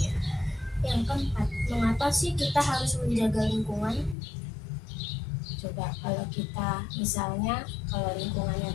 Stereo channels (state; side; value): drops out; right; at 4.2 s